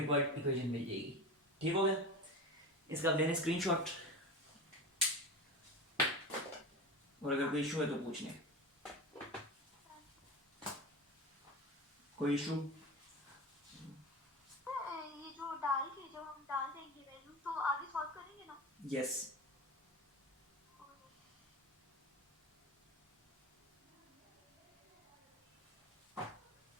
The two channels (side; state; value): both; normal; correlation 0.28